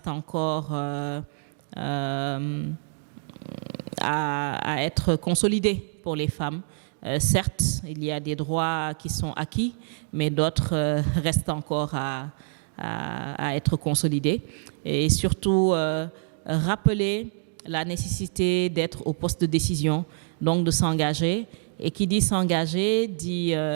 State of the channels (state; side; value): silent; left; digital silence